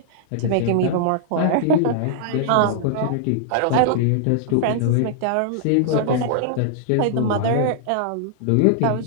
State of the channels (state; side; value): different; both; correlation -0.01